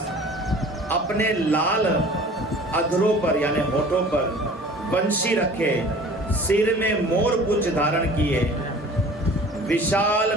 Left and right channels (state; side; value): normal; both; correlation 0.45